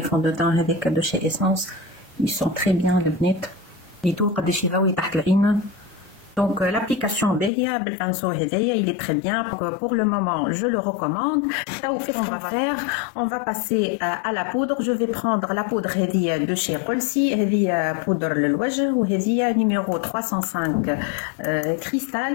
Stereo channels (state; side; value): drops out; right; at 7.5 s